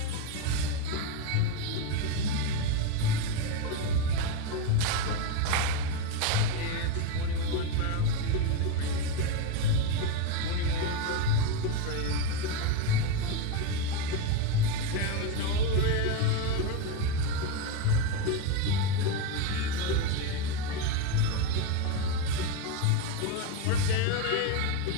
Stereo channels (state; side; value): different; both; correlation 0.04